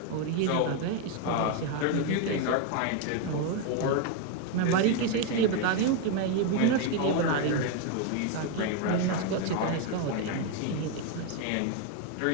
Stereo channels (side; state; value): both; different; correlation 0.01